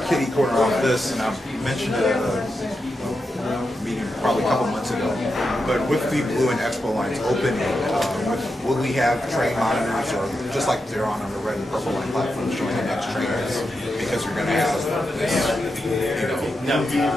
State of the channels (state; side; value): normal; both; correlation 0.87